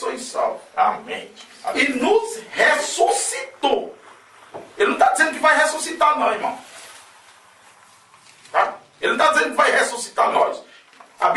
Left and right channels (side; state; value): both; identical; correlation 1.00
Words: salvos. Amém. E nos ressuscitou. Ele não está dizendo que vai ressuscitar nós, irmão. Tá? Ele não está dizendo que vai ressuscitar nós. A